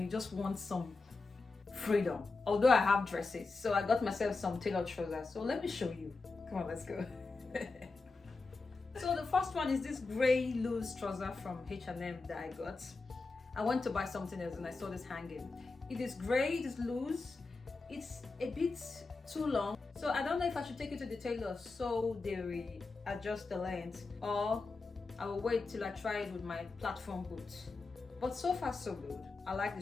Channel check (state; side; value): quieter; right; 3.9 dB